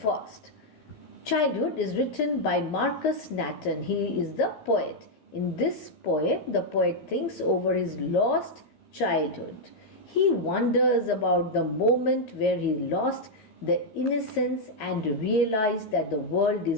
Childhood is written by Markurs Natten. He is the poet. In this poem, the poet thinks over his lost childhood. He wonders about the moment where he lost the innocence and realized that the world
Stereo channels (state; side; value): late; right; 14 ms